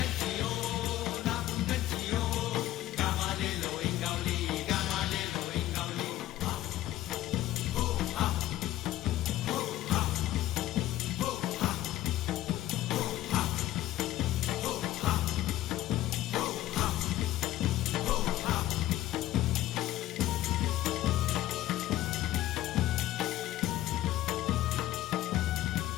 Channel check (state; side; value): quieter; right; 14.5 dB